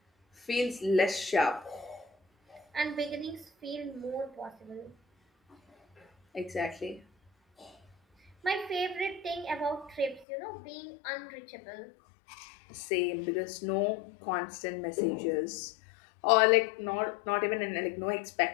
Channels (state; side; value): drops out; right; at 10.2 s